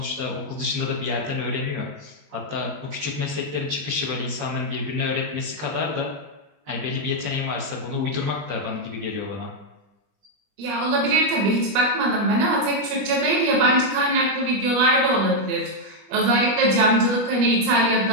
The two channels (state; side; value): late; left; 21 ms